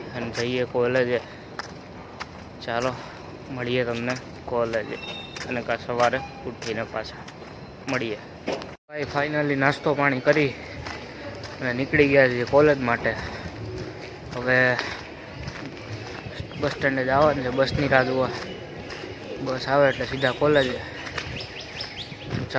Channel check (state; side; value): identical; both; correlation 1.00